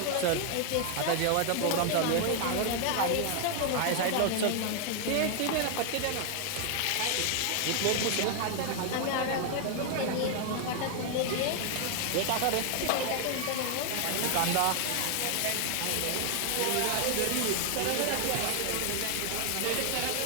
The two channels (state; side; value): different; both; correlation 0.00